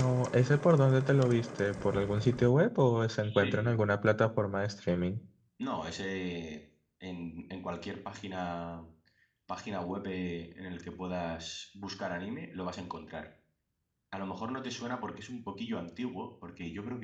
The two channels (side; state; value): both; identical; correlation 1.00